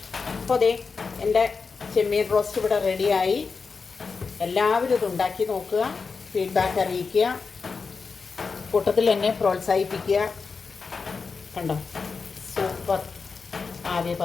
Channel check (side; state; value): right; quieter; 4.9 dB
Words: അപ്പോൾ അതെ എൻ്റെ ചെമ്മീൻ റോസ്റ്റ് ഇവിടെ റെഡിയായി. എല്ലാവരും ഇത് ഉണ്ടാക്കി നോക്കുക, ഫീഡ്ബാക്ക് അറിയിക്കുക, കൂട്ടത്തിൽ എന്നെ പ്രോത്സാഹിപ്പിക്കുക. കണ്ടോ, സൂപ്പർ ആവി